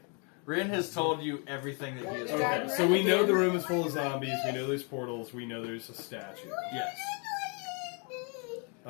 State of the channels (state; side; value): quieter; right; 36.5 dB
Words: Ren has told you everything that he has told Okay. you. So we know the room is full of zombies. We know there's portals. We know there's a statue. Yes.